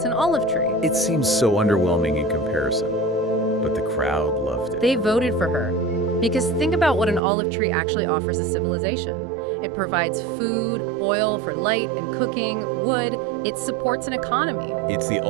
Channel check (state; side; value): drops out; left; at 7.2 s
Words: an olive tree. It seems so underwhelming in comparison, but the crowd loved it. They voted for her. Because think about what an olive tree actually offers a civilization. It provides food, oil for light and cooking, wood. It supports an economy. It's the